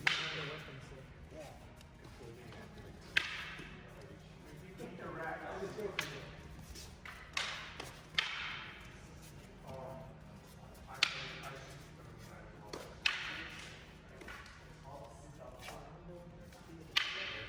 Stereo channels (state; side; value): identical; both; correlation 1.00